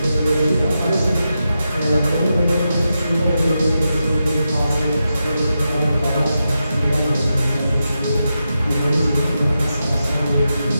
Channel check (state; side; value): inverted; both; correlation -0.88